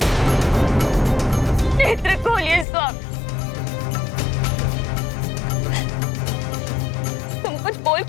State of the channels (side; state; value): right; drops out; at 2.7 s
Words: नेत्र खोलिए स्वामी। तुम कुछ बोल